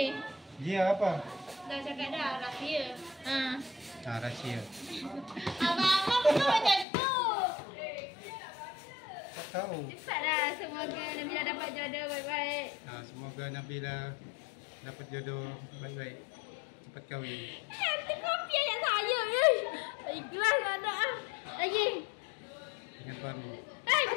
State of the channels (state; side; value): drops out; right; at 6.9 s